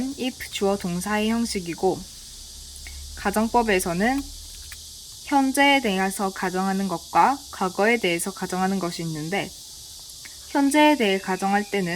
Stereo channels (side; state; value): both; identical; correlation 1.00